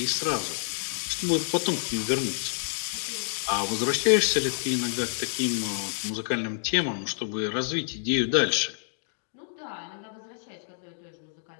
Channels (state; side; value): silent; right; digital silence